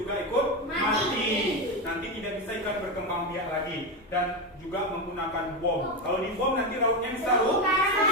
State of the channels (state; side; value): normal; both; correlation 0.12